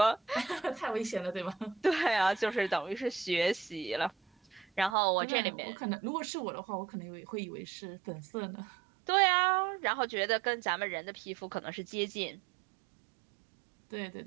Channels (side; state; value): left; drops out; at 5.0 s